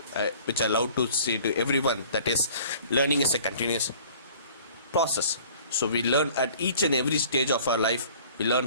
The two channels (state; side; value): inverted; both; correlation -0.50